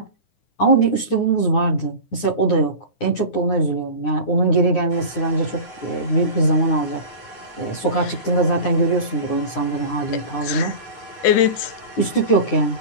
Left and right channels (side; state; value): right; late; 9.6 ms